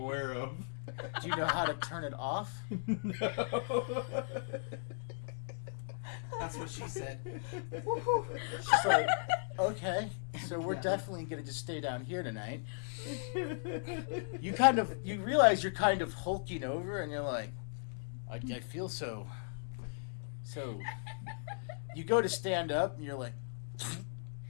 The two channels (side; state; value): right; silent; digital silence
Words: of. Do you know how to turn it off? No. That's what she said. She's like, okay, so we're Yeah. definitely going to just stay down here tonight. You realize you're kind of hulking over, and you're like, I feel so. You go to stand up, and you're like,